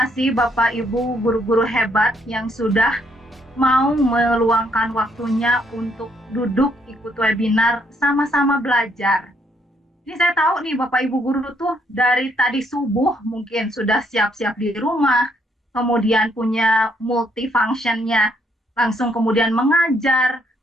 Bapak Ibu guru-guru hebat yang sudah mau meluangkan waktunya untuk duduk ikut webinar sama-sama belajar. Ini saya tahu nih Bapak Ibu guru tuh dari tadi subuh mungkin sudah siap-siap di rumah, kemudian punya multifunctionnya, langsung kemudian mengajar,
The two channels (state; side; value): normal; both; correlation 0.71